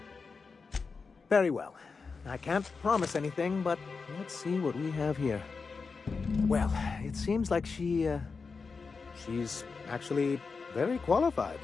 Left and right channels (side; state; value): right; quieter; 4.8 dB